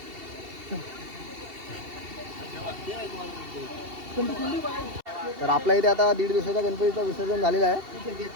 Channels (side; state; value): left; late; 2.7 ms